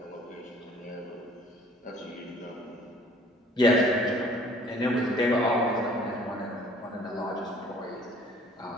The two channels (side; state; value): both; normal; correlation 0.54